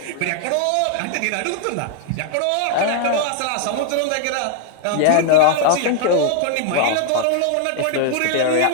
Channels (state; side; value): different; both; correlation 0.00